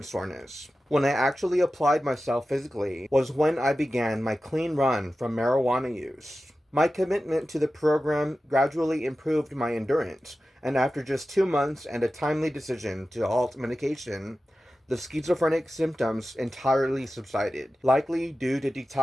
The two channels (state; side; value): normal; both; correlation 0.94